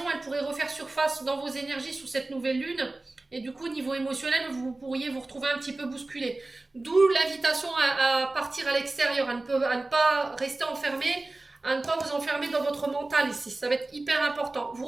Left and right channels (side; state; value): left; quieter; 3.0 dB